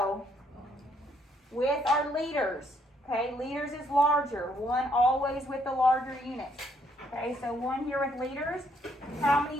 With our liters. Okay, liters is larger. 1 always with the larger unit. Okay, so 1 here with liters. How many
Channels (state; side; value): normal; both; correlation 0.69